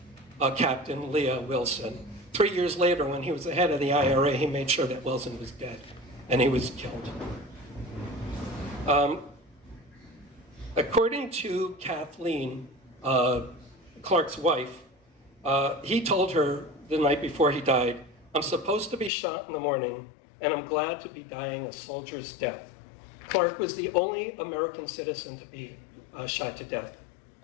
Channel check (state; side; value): drops out; right; at 19.1 s